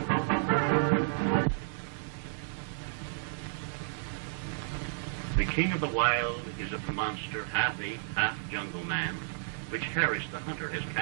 king of the wild is a monster, half ape, half jungle man, which Harris the hunter has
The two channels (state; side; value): silent; left; digital silence